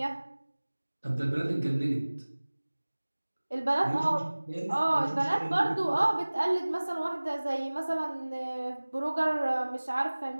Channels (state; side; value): inverted; both; correlation -1.00